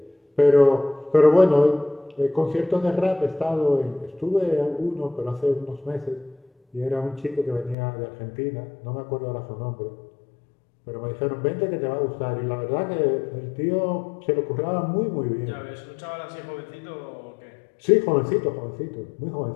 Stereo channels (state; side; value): drops out; right; at 7.8 s